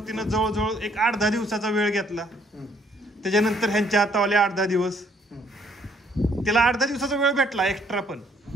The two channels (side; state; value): both; normal; correlation 0.65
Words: तिनं जवळजवळ 8-10 दिवसाचा वेळ घेतला. त्याच्यानंतर ह्यांच्या हातावाले 8-10 दिवस, तिला 8-10 दिवसाचा वेळ भेटला एक्स्ट्रा. पण